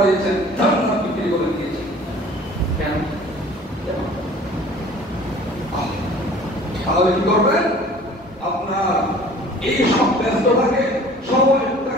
জান্নাত বিক্রি করে দিয়েছেন। কেন? তাহলে কি করবেন? আপনার এই সব ব্যস্ততাকে,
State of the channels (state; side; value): normal; both; correlation 0.48